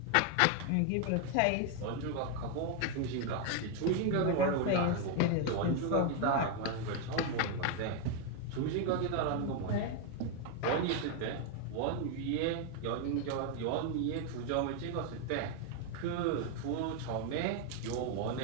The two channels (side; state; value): both; different; correlation 0.01